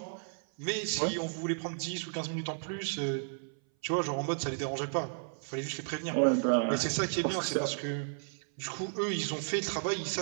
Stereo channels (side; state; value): left; silent; 56 dB below the other